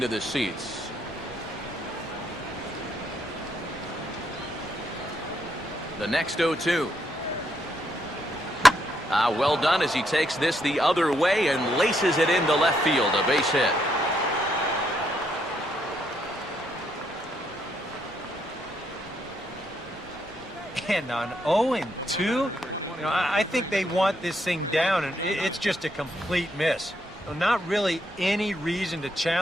the seats. The next 0-2. Well done as he takes this the other way and laces it into left field, a base hit. And on 0-2, You know, I think they want this thing down, and it's just a complete miss. So not really any reason to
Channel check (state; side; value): noise; right; rumble, 25 dB below the sound